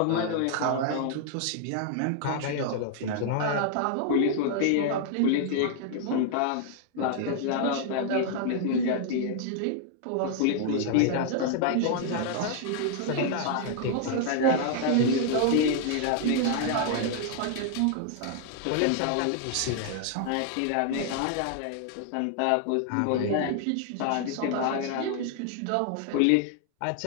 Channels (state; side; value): different; both; correlation 0.00